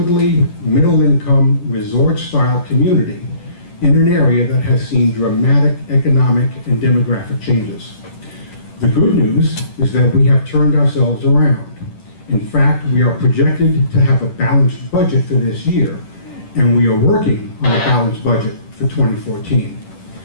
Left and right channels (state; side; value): late; right; 10 ms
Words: middle-income, resort-style community in an area that has seen dramatic economic and demographic changes. The good news is that we have turned ourselves around. In fact, we are projected to have a balanced budget for this year, and we are working on a balanced budget for 2014.